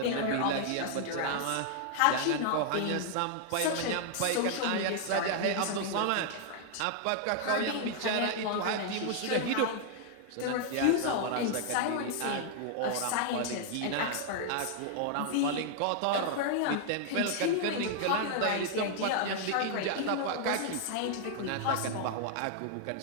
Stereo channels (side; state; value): both; different; correlation -0.01